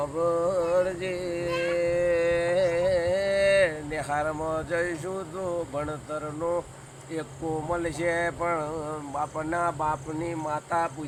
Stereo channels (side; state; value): both; identical; correlation 1.00